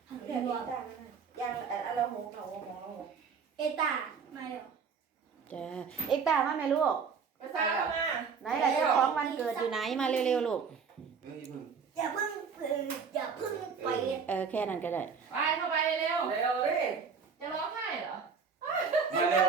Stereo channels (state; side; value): quieter; left; 5.9 dB